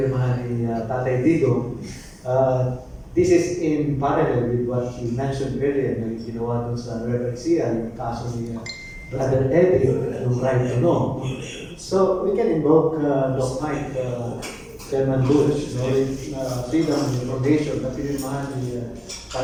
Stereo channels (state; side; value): identical; both; correlation 1.00